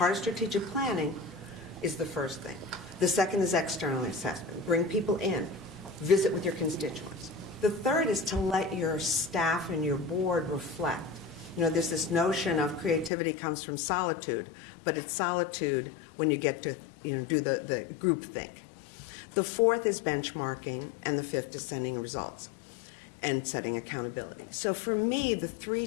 of strategic planning, is the first thing. The second is external assessment. Bring people in. Visit with your constituents. The third is to let your staff and your board reflect. You know, there's this notion of creativity comes from solitude, but it's solitude when you get to, you know, do the group think. The fourth is benchmarking, and the fifth is sending results and setting accountability. So for me, the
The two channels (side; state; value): right; drops out; at 13.1 s